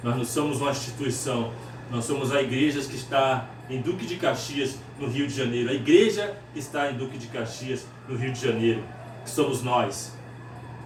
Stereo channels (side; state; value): both; identical; correlation 1.00